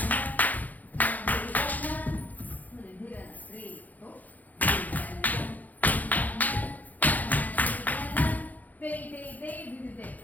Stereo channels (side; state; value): right; late; 0.081 ms